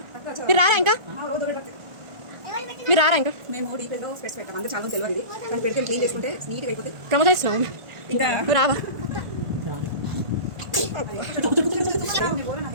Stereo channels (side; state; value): left; late; 1.5 ms